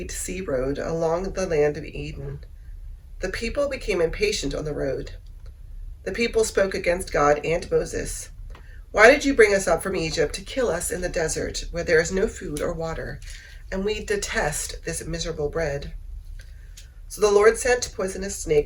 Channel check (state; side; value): identical; both; correlation 1.00